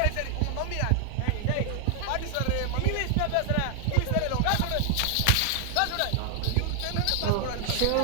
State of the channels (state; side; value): different; both; correlation 0.00